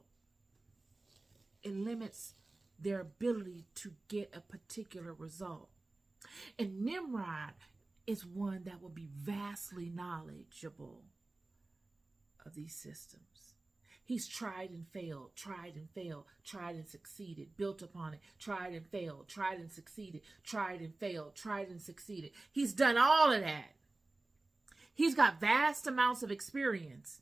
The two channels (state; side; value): quieter; left; 3.1 dB